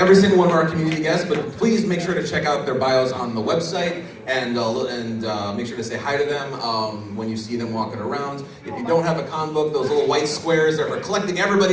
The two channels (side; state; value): both; identical; correlation 1.00